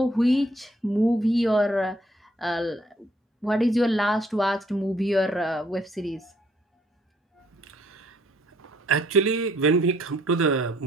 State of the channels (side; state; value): both; normal; correlation 0.65